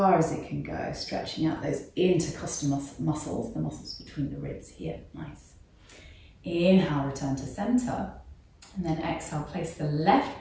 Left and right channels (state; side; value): identical; both; correlation 1.00